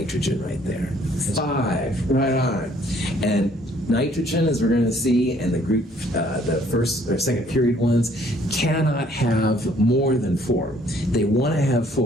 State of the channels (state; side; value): normal; both; correlation 0.61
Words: right there? 5, right on. And nitrogen, as we're going to see, and the group, the first or second period ones, cannot have more than 4. They want to have